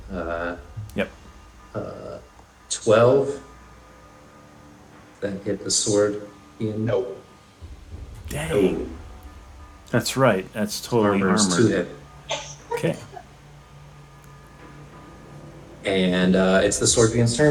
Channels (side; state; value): both; identical; correlation 1.00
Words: yep. 12. That hit the sword. Ian? Nope. Dang. That's right. That's totally Armor's 2 armored. hit. Okay. And it's the Scorpion's